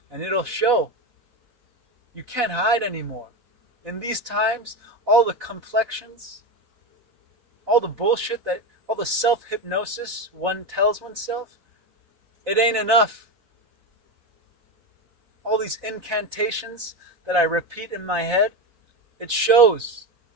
And it'll show. You can't hide anymore. In these times, all the complexions, all the bullshit, all the self-hypnosis one tells oneself, it ain't enough. All these incantations that I repeat in my head, it shows.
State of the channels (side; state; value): left; late; 4.1 ms